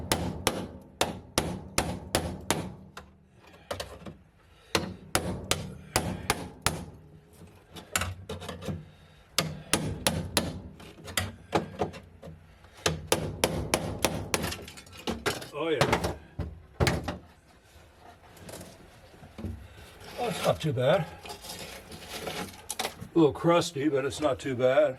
Oh yeah. Oh, it's not too bad. A little crusty, but it's not too bad.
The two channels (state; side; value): identical; both; correlation 1.00